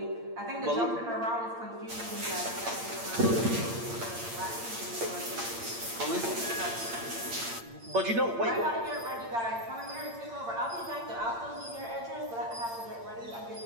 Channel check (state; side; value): late; left; 8.7 ms